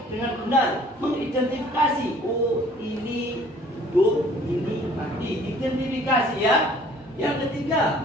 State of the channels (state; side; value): normal; both; correlation 0.55